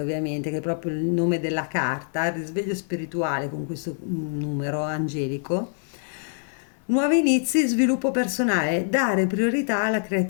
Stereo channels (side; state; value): right; silent; digital silence